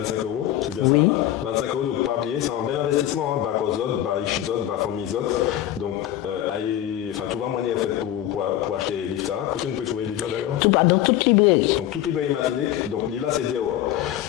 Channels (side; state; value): right; quieter; 12.7 dB